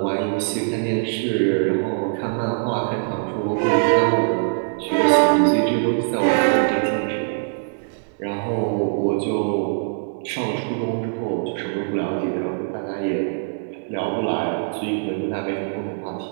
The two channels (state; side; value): silent; left; digital silence